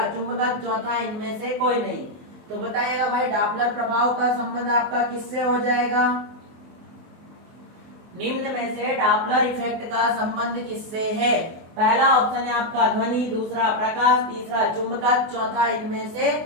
चुंबकत्व, चौथा इनमें से कोई नहीं। तो बताइएगा भाई डॉपलर प्रभाव का संबंध आपका किससे हो जाएगा। निम्न में से डॉपलर इफेक्ट का संबंध किससे है। पहला ऑप्शन है आपका ध्वनि, दूसरा प्रकाश, तीसरा चुंबकत्व, चौथा इनमें से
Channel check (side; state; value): left; late; 24 ms